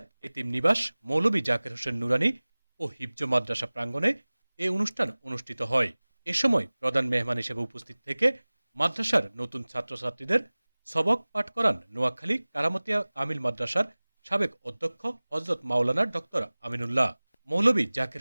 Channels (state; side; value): inverted; both; correlation -1.00